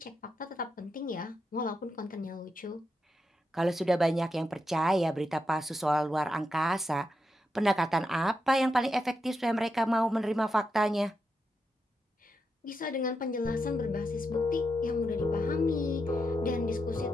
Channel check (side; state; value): both; normal; correlation 0.85